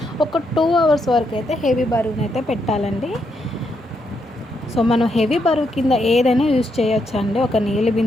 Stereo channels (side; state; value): both; normal; correlation 0.79